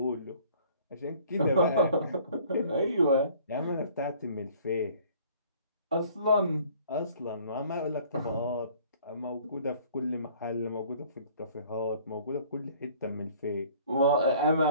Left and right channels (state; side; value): inverted; both; correlation -0.54